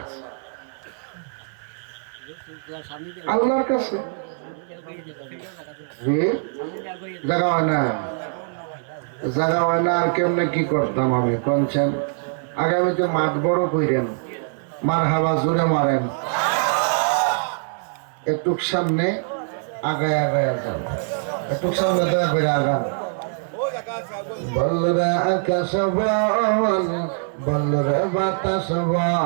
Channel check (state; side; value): silent; left; 58 dB below the other